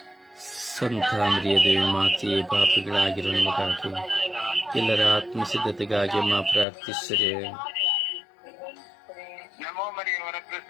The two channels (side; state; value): right; drops out; at 6.7 s